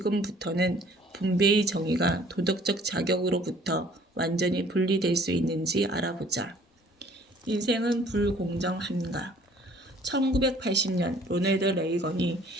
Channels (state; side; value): normal; both; correlation 0.55